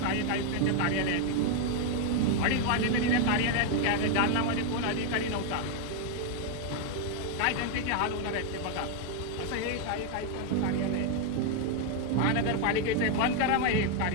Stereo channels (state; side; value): different; both; correlation 0.01